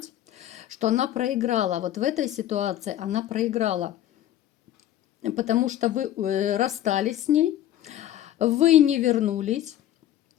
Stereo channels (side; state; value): right; quieter; 12.3 dB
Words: что она проиграла. Вот в этой ситуации она проиграла. Потому что вы расстались с ней, вы не вернулись,